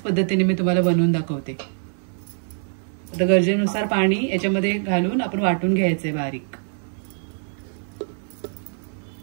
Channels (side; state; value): left; silent; digital silence